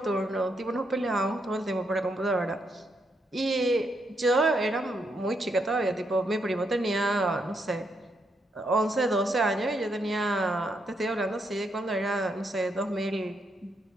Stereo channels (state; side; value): normal; both; correlation 0.78